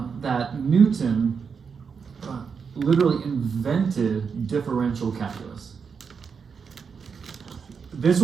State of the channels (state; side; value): quieter; left; 6.0 dB